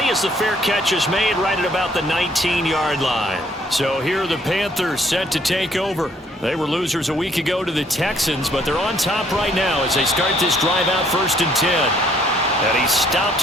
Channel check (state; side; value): normal; both; correlation 0.64